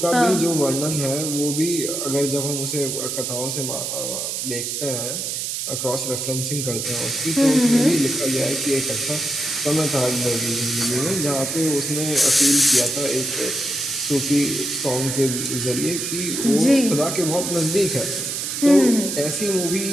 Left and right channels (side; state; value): right; noise; hiss, 3 dB below the sound